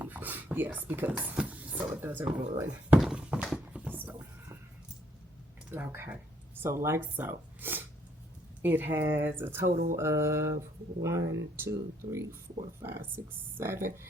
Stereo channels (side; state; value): both; normal; correlation 0.68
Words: Yes, because, so it doesn't ruin. So, okay. So like so. It has a total of 1, 2, 3, 4, 5, 6,